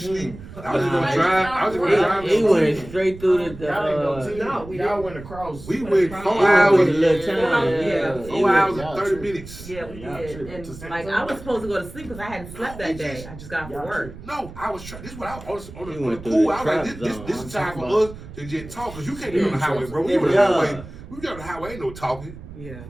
I was just gonna drive. I was just gonna drive. He went straight through the. Y'all ain't no team. No, we Y'all didn't. went across. We went went across. 4 It was hours. a little time. Yeah. 4 hours and 30 minutes. Yeah, we Y'all did. tripping. And like I was supposed to go to sleep because I hadn't slept that day. I just got off Y'all from work. No, I was trying. This is what I was on You the went through pool. the I was like, trap this zone. is time for I'm us to just talk because you can't get on the highway, bro. We on the Yeah. highway. We get on the highway, ain't no talking. Yeah.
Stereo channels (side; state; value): right; noise; rumble, 15 dB below the sound